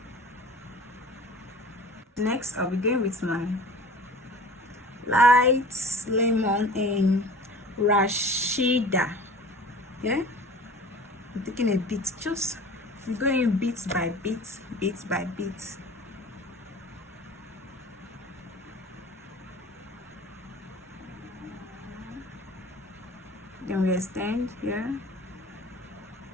Next, I'll be going with my light lemon in Rashida. Yeah, I'm taking a bit, just we're going bit by bit, bit by bit. Then we extend here.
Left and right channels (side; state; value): both; normal; correlation 0.42